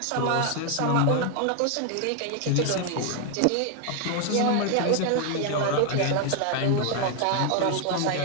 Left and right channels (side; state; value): both; different; correlation 0.01